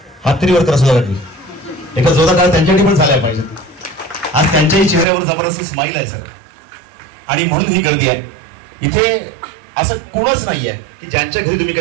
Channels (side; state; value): left; drops out; at 5.1 s